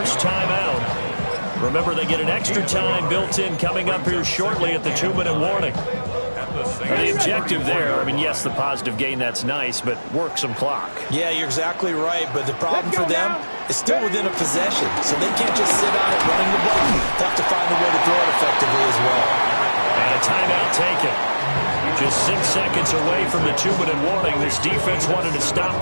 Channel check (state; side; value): inverted; both; correlation -1.00